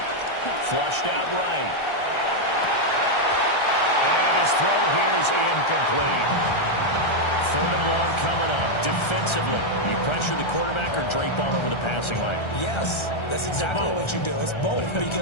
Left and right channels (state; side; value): late; right; 1.3 ms